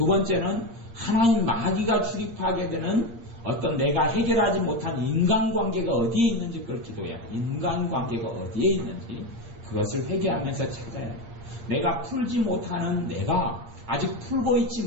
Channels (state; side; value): late; left; 8.6 ms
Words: 번째는 하나님 마귀가 출입하게 되는 어떤 내가 해결하지 못한 인간관계가 어디에 있는지 그걸 기도해야 돼. 인간관계가 어디에 있는지 그것을 회개하면서 찾아야 돼. 내가 풀지 못하는, 내가 아직 풀고